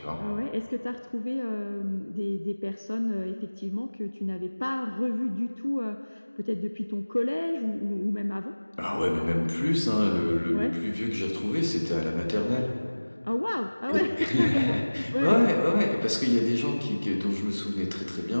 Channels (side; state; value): both; inverted; correlation -1.00